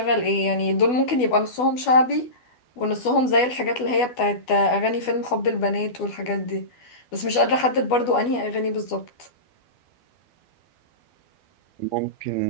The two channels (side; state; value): right; late; 12 ms